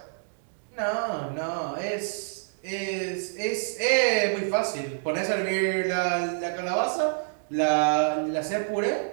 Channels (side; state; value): left; silent; digital silence